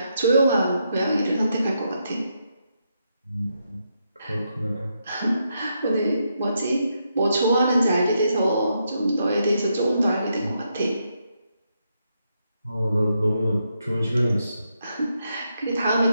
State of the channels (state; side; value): inverted; both; correlation -0.81